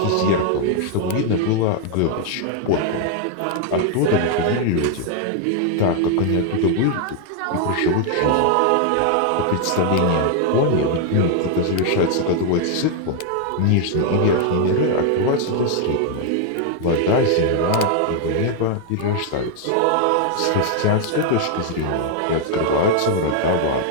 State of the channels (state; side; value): different; both; correlation 0.00